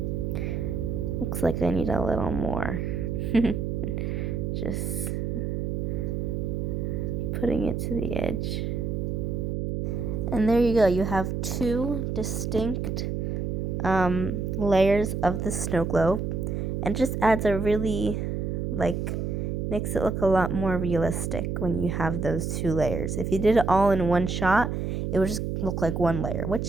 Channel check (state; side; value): noise; right; hum, 2 dB below the sound